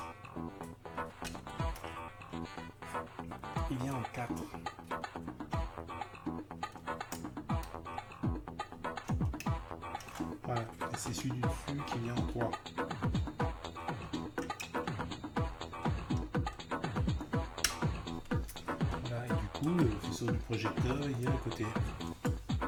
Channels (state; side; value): identical; both; correlation 1.00